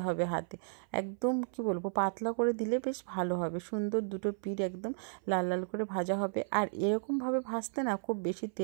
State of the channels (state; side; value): silent; left; 55 dB below the other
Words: হবে হাতে, একদম কি বলবো পাতলা করে দিলে বেশ ভালো হবে, সুন্দর দুটো পিঠ একদম লাল লাল করে ভাজা হবে। আর এরকমভাবে ভাজতে না খুব বেশি